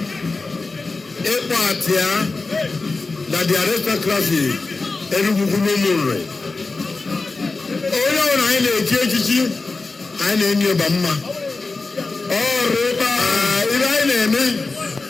ịkpọ atịa na the aristocracy Enugu ukwu n'ụmụnri onye ọbụla anyị na-echi echichi anyị na-enye ịba mma ọrụ ibe anyị na-eme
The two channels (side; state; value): right; quieter; 3.7 dB